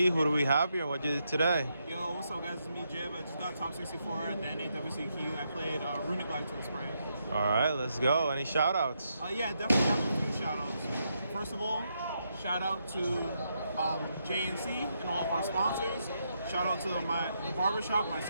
Who do we have here and what you did today? Yo, what's up, guys? It's me, Jib. I just got top 64 at the NAWCQ. I played Runick Live Twin Sprite. All right, let's go. Any shout outs? Yeah, definitely have a few shout outs. First of all, shout out to JNC and all of our sponsors. Shout out to the barbershop, my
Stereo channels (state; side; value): inverted; both; correlation -0.80